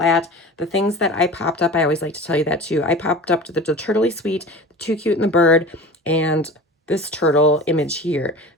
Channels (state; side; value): normal; both; correlation 0.36